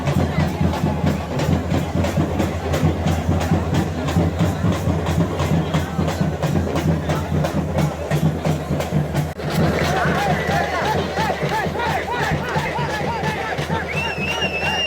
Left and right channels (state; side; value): identical; both; correlation 1.00